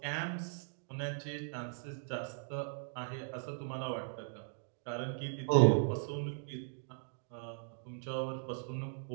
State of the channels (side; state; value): left; silent; digital silence